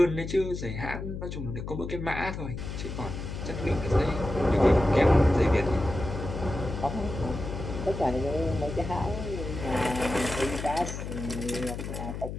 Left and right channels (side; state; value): left; noise; hum, 7 dB below the sound